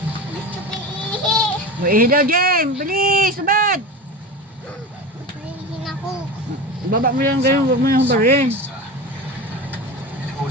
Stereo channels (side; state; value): both; normal; correlation 0.28